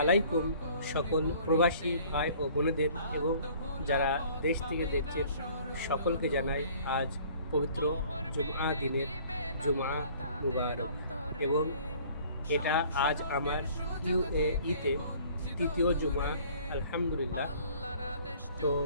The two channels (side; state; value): both; inverted; correlation -0.53